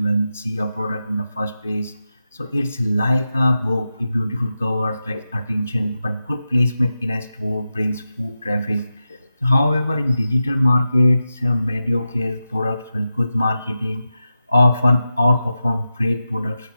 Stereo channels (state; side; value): inverted; both; correlation -0.90